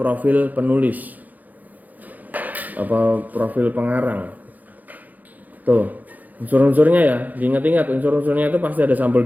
penulis, apa profil pengarang. Tuh unsur-unsurnya ya, diingat-ingat unsur-unsurnya itu pasti ada sampul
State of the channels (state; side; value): late; left; 0.081 ms